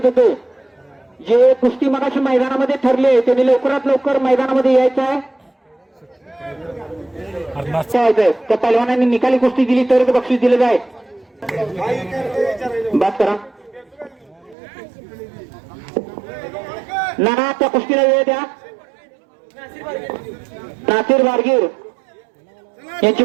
येतो. जे कुस्ती मगाशी मैदानामध्ये ठरले त्यांनी लवकरात लवकर मैदानामध्ये यायचं आहे. त्या पैलवानांनी निकाली कुस्ती दिली तरच बक्षीस दिलं जाईल. बात करा नाना त्या कुस्तीला वेळ द्या. नासिर बारगीर यांची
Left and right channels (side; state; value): left; drops out; at 14.6 s